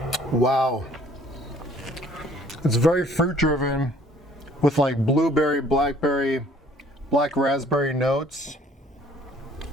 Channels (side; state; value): both; normal; correlation 0.57